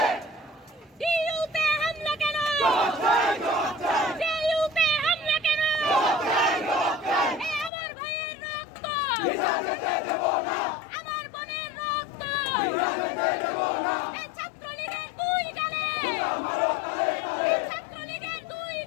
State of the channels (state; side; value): drops out; right; at 7.7 s